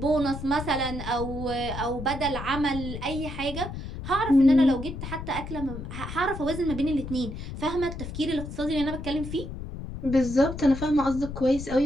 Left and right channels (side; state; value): left; noise; rumble, 8 dB below the sound